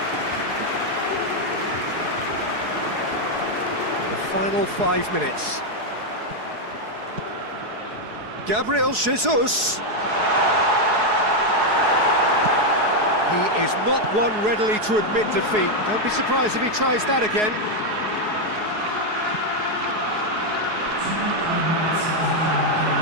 The final 5 minutes. Gabriel Jesus. He is not one readily to admit defeat. Don't be surprised if he tries that again.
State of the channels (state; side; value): late; left; 4.7 ms